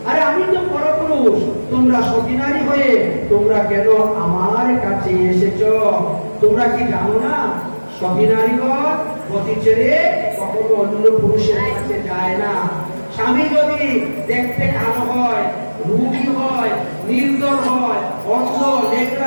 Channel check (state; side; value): inverted; both; correlation -1.00